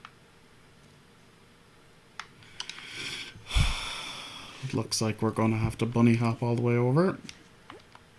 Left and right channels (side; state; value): both; identical; correlation 1.00